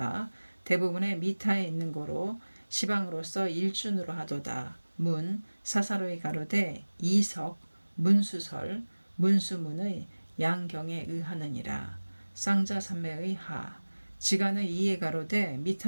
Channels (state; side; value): inverted; both; correlation -1.00